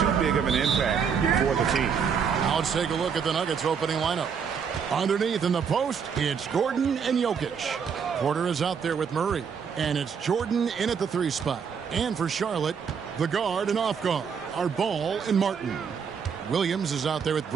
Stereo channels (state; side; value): quieter; left; 6.7 dB